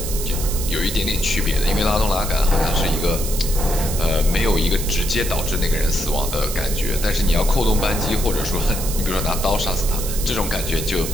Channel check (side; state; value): right; noise; hiss, 7 dB below the sound